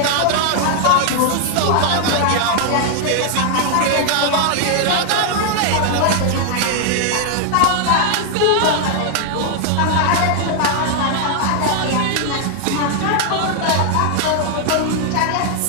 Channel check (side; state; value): both; different; correlation 0.00